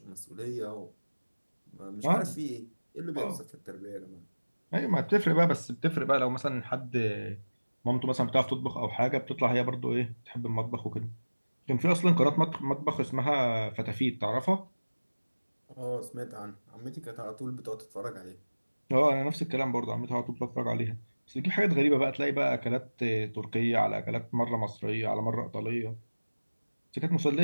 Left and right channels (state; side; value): inverted; both; correlation -1.00